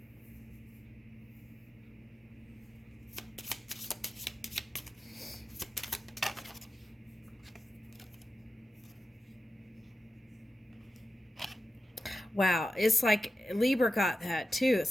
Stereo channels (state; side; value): normal; both; correlation 0.92